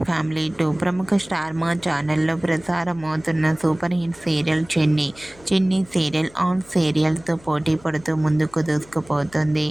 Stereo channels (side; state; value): left; noise; hum, 25 dB below the sound